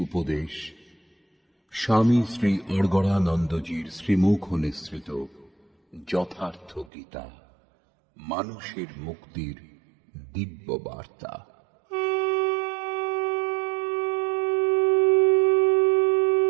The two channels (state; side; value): drops out; left; at 6.9 s